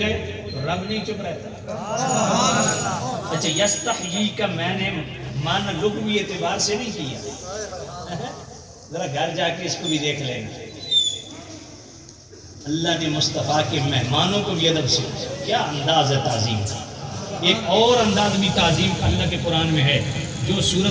ہے تو رب نہیں چپ رہتا. اچھا یستحیی کا میں نے معنی لغوی اعتبار سے نہیں کیا, ذرا گھر جا کے اس کو بھی دیکھ لیں گے. اللہ نے مصطفیٰ کے مہمانوں کو بھی ادب سے کیا انداز ہے تعظیم کا. ایک اور انداز بھی تعظیم کا اللہ کے قرآن میں ہے جو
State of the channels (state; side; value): identical; both; correlation 1.00